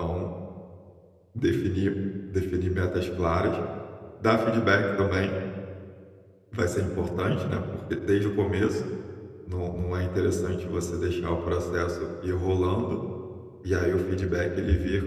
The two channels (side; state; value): both; identical; correlation 1.00